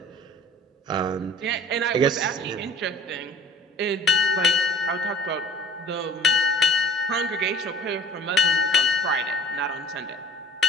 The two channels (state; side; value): normal; both; correlation 0.46